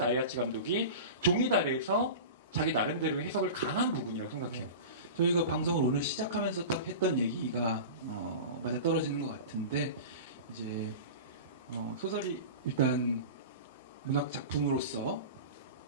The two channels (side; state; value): both; inverted; correlation -0.31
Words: 감독이 종이달에서 자기 나름대로의 해석을 강한 부분이라고 생각해요. 저희가 방송을 오늘 시작하면서 딱 했던 얘기가 맞아 떨어지는 것 같은데, 이제 소설이 일단 문학 작품으로서